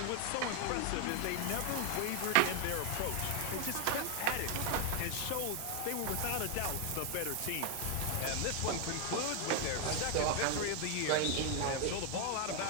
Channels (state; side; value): different; both; correlation 0.01